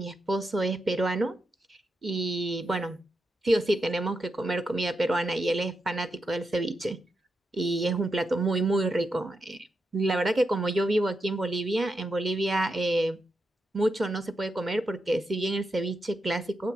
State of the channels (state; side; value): normal; both; correlation 0.86